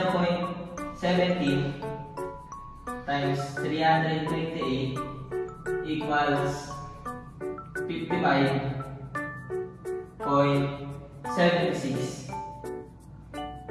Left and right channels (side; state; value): both; identical; correlation 1.00